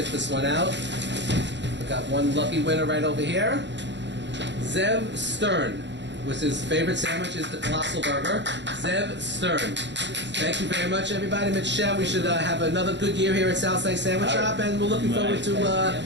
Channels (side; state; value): left; late; 0.52 ms